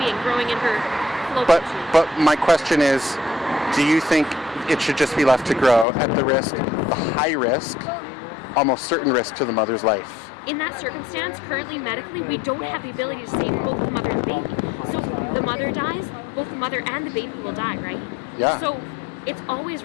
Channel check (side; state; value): right; drops out; at 5.9 s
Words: growing in her fallopian tube. But my question is, do you think it should just be left to grow at the high risk, almost certain risk to the mother's life? In that circumstance, currently medically, we don't have the ability to save both the mother and the baby. So if the mother dies, both the mother and the baby will die, right? Yeah. So it's always